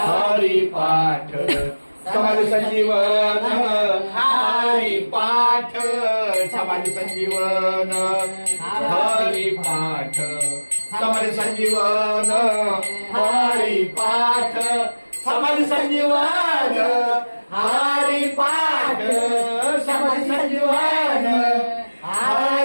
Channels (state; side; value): inverted; both; correlation -1.00